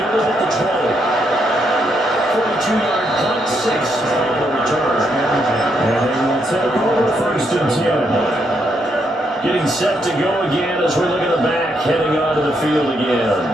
at the 20. 42-yard punt, 6 on the return. And they will take over 1st and 10. Getting set to go again as we look at the back, heading onto the field again.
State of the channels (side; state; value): both; normal; correlation 0.77